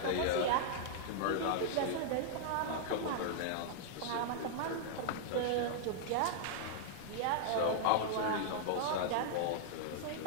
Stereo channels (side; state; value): both; different; correlation -0.01